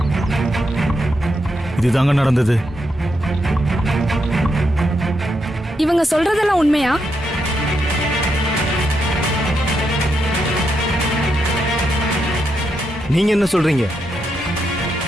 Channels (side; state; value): both; normal; correlation 0.82